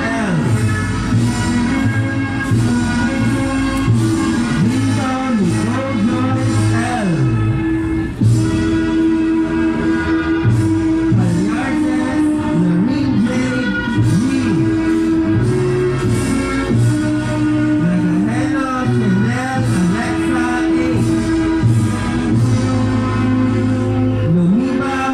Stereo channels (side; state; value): both; identical; correlation 1.00